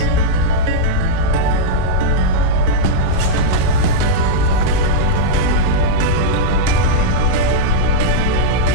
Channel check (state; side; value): different; both; correlation -0.04